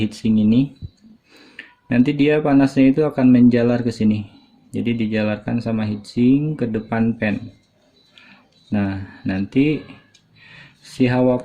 ini. Nanti dia panasnya itu akan menjalar ke sini. Jadi dijalarkan sama heatsink ke depan pen. Nah, nanti si hawa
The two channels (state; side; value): identical; both; correlation 1.00